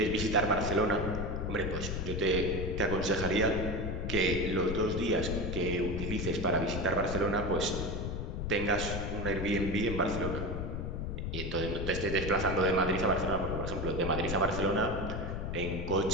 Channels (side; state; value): left; noise; rumble, 3 dB below the sound